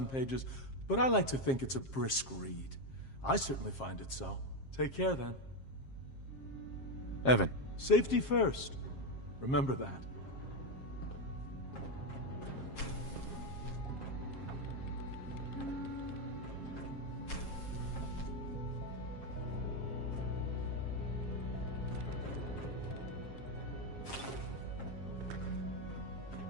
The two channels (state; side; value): late; right; 7.5 ms